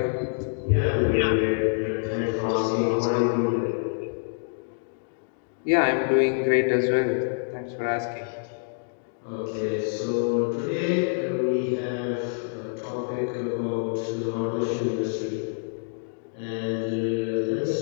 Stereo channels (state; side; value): silent; right; digital silence